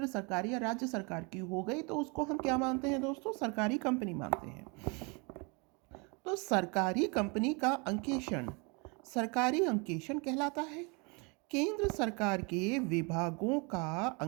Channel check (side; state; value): left; quieter; 31.1 dB